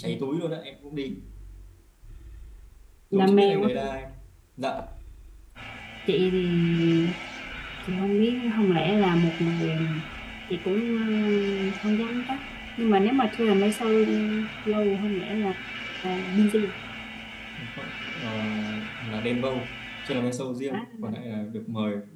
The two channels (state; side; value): identical; both; correlation 1.00